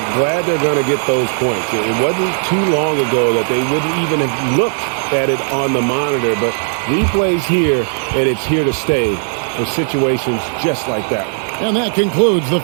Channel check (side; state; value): left; silent; 64 dB below the other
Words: glad they're going to get those points. It wasn't too long ago that they wouldn't even have looked at it on the monitor, but replay's here, and it's here to stay for situations just like that. And that concludes the